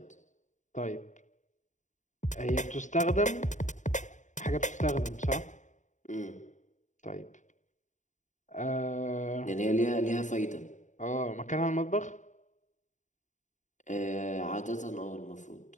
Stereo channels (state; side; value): late; right; 0.36 ms